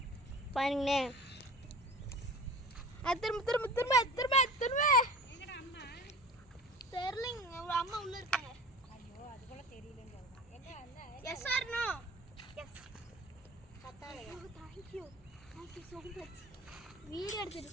பாருங்களே. திரும்ப. எங்கடா அம்மா? தெரியலங்க. அம்மா உள்ள இருக்காங்க. ஐயோ அது கூட தெரியலன்னு சொல்றாங்க. எங்க அந்த yes or no? Yes. Thank you so much. Video எடுத்துட்டு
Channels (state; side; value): normal; both; correlation 0.38